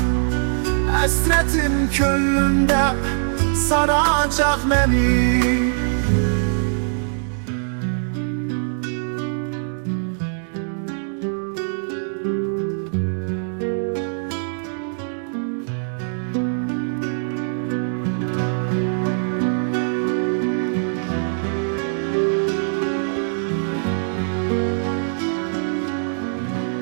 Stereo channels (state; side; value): silent; left; digital silence